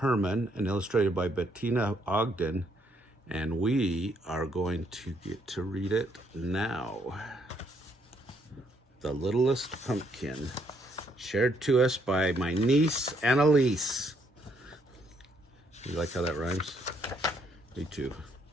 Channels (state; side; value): normal; both; correlation 0.71